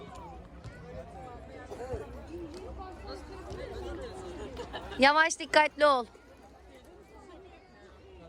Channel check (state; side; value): identical; both; correlation 1.00